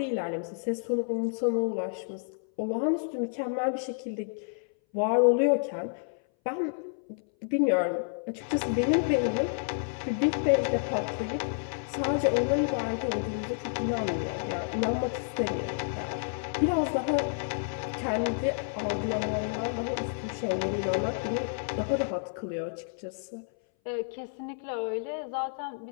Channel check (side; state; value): right; silent; 58 dB below the other